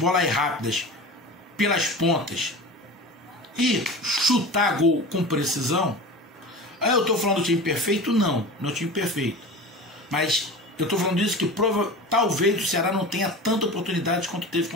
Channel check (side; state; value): both; normal; correlation 0.32